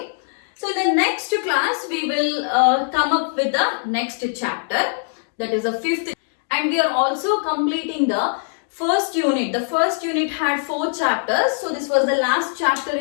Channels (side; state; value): right; silent; digital silence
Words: So in the next class we will come up with the next chapter, that is the 5th, and we are also completing the first unit. The first unit had 4 chapters, so this was the last chapter